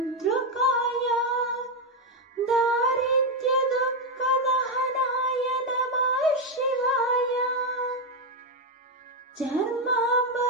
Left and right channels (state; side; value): normal; both; correlation 0.05